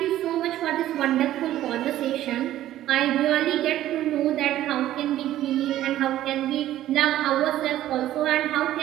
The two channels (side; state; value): left; quieter; 13.4 dB